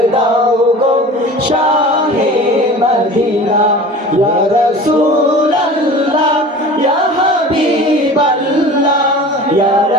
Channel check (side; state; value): both; normal; correlation 0.39